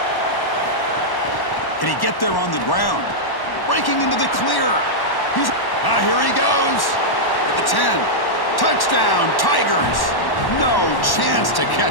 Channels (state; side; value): late; right; 1.1 ms